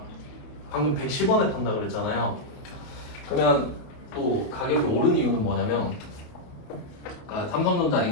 방금 110원에 판다 그랬잖아요. 그러면 또 가격이 오른 이유는 뭐냐면, 그러니까 삼성전자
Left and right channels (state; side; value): late; right; 28 ms